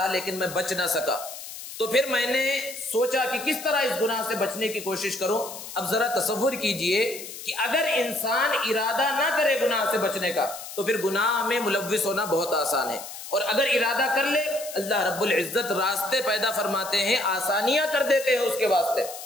لیکن میں بچ نہ سکا. تو پھر میں نے سوچا کہ کس طرح اس گناہ سے بچنے کی کوشش کروں. اب ذرا تصور کیجئے کہ اگر انسان ارادہ نہ کرے گناہ سے بچنے کا تو پھر گناہ میں ملوث ہونا بہت آسان ہے، اور اگر ارادہ کر لے اللہ رب العزت راستے پیدا فرماتے ہیں، آسانیاں کر دیتے ہیں اس کے واسطے.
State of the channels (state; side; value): noise; left; hiss, 11 dB below the sound